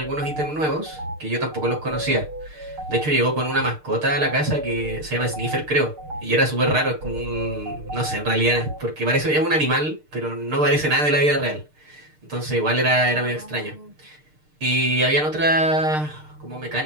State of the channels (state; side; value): late; left; 6.6 ms